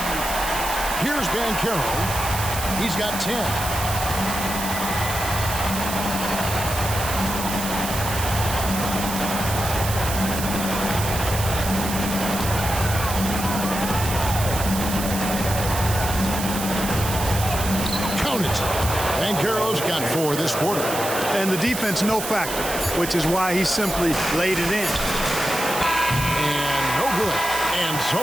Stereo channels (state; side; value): noise; right; hiss, 6 dB below the sound